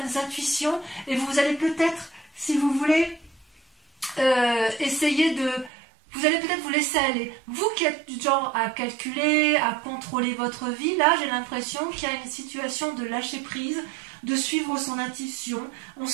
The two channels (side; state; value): left; drops out; at 5.7 s